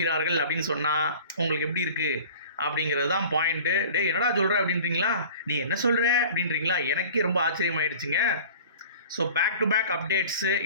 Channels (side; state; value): both; inverted; correlation -0.43